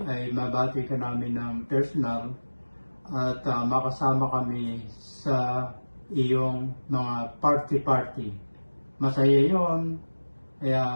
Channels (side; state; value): both; inverted; correlation -1.00